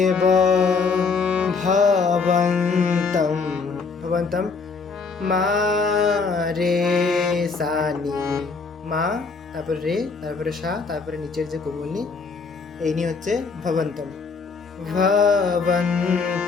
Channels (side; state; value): right; quieter; 4.7 dB